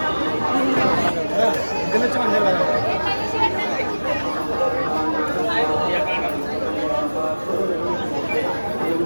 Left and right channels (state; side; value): inverted; both; correlation -1.00